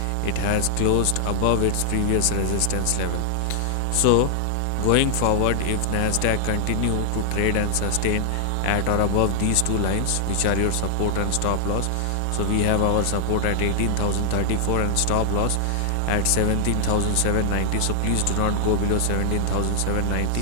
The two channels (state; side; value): different; both; correlation 0.00